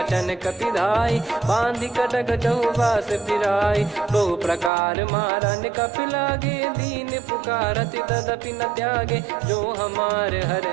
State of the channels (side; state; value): left; drops out; at 4.7 s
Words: कपिधाई बांधि कटक चहुबास फिराई बहु प्रकार मारन कपि लागे दीन पुकारति तदपि न त्यागे जो हमार